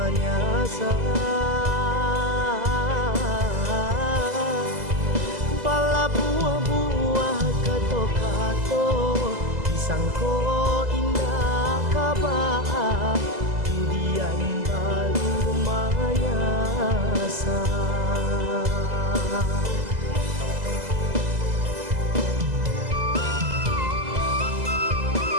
pala buah-buah kato-kato sangko indah kabaa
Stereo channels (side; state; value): left; late; 2.0 ms